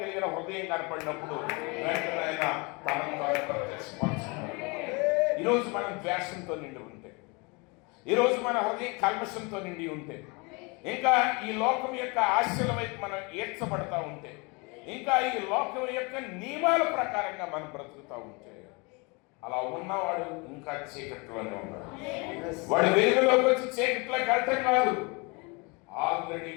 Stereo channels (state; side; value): quieter; right; 29.0 dB